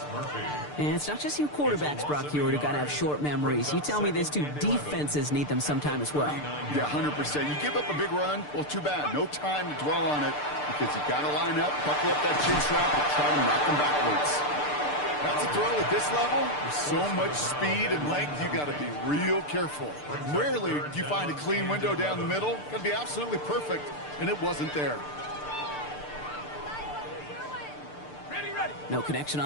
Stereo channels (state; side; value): late; right; 6.7 ms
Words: And it's not just you quarterbacks, Brock Hewitt, who got to have short memories. You tell me this too, defenses need them sometime as well. Yeah, 100%. You give up a big run, well, too bad. No time to dwell on it because you got to line up, buckle up that chin strap, and try to knock them backwards. That's a throw at this level. With so much speed and length, you got to be real careful. Rarely do you find a clean window down the middle. Got to be absolutely perfect, and it wasn't there. No connection